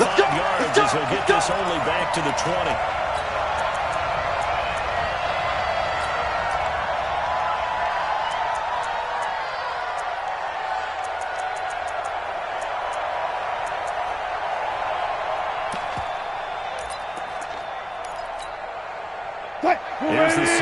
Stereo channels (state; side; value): identical; both; correlation 1.00